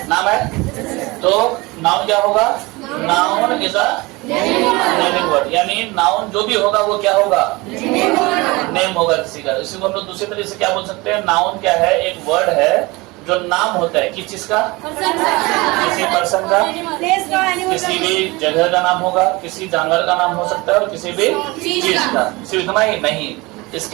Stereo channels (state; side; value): quieter; left; 23.3 dB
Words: नाम है तो नाउन क्या होगा? Noun is a naming word, यानी नाउन जो भी होगा वो क्या होगा? नेम होगा किसी का। इसी को हम लोग दूसरी तरीके से क्या बोल सकते हैं? नाउन क्या है? एक वर्ड है जो नाम होता है किस चीज का? किसी पर्सन का, किसी भी जगह का नाम होगा, किसी जानवर का नाम हो सकता है और किसी भी चीज का। सिर्फ इतना ही नहीं,